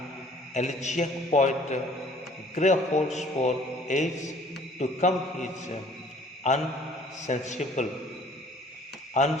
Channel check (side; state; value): both; normal; correlation 0.54